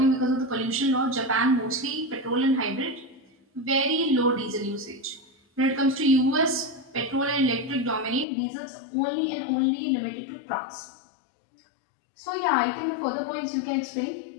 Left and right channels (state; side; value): drops out; right; at 8.2 s